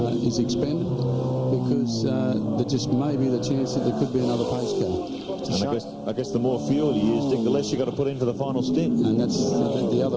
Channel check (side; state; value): both; identical; correlation 1.00